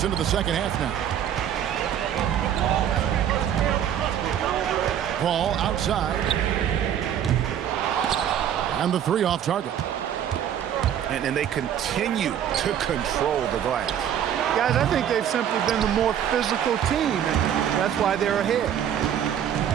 into the second half now. Paul outside. And the 3 off target. And they continue to control the glass. Guys, I think they've simply been the more physical team, and that's why they're ahead.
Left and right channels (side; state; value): left; quieter; 9.7 dB